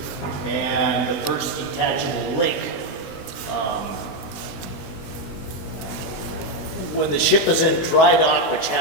and the first detachable link. When the ship is in dry dock, which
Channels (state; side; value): late; right; 19 ms